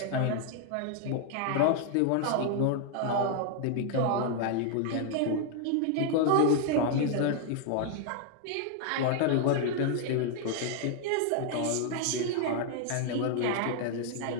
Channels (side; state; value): both; different; correlation 0.00